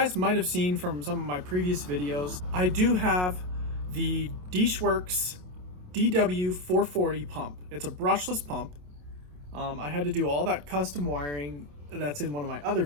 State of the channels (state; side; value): late; left; 27 ms